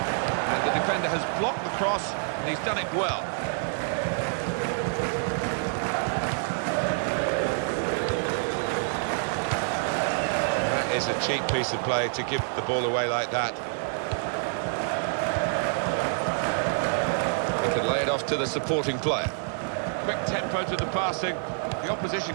And the defender has blocked the cross, and he's done it well. Is a cheap piece of play to give the ball away like that. He can lay it off to the supporting player. Quick tempo to the passing. The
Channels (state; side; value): silent; left; 60 dB below the other